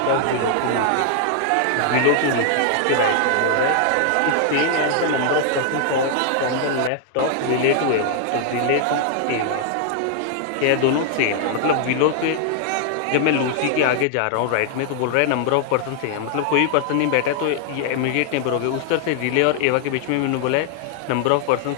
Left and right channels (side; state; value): both; different; correlation 0.00